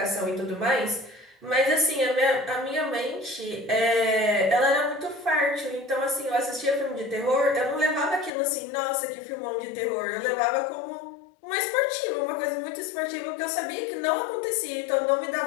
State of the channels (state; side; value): drops out; right; at 8.3 s